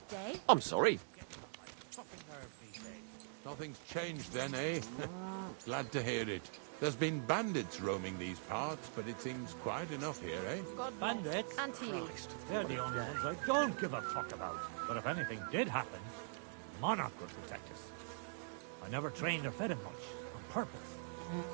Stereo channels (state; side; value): silent; left; digital silence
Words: day. I'm sorry. Nothing's changed then, eh? Glad to hear it. There's been bandits roaming these parts, but it seems quiet enough here, eh? God Bandits? And to you. Christ. They're the only ones I don't give a fuck about. But if anything did happen, Monarch would protect us. I never trained or fed him much, on purpose,